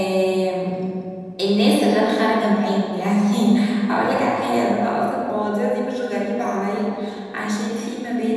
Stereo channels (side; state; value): both; identical; correlation 1.00